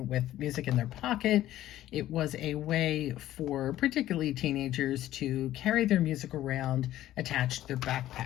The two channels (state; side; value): quieter; right; 13.8 dB